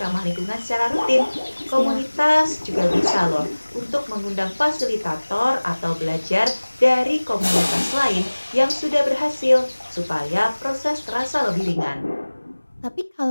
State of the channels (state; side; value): inverted; both; correlation -1.00